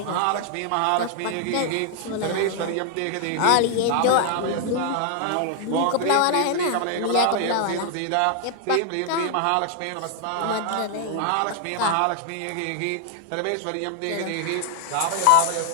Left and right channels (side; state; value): both; different; correlation 0.00